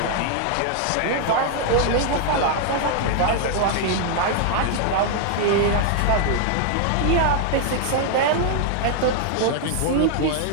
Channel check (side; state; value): both; different; correlation 0.00